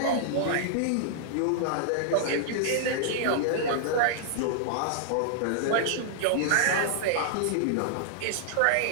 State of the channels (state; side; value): different; both; correlation -0.01